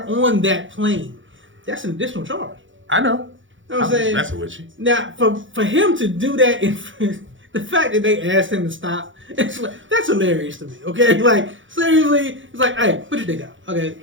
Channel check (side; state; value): left; late; 0.56 ms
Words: on that plane, that's an additional charge. I know. You know what I'm saying? That's with you. Now, for him to do that, the fact that they asked him to stop, it's like, that's hilarious to me. Okay, like seriously, it's like, hey, put your dick out. Okay,